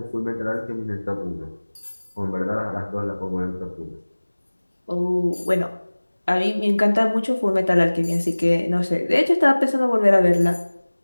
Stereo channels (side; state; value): both; inverted; correlation -1.00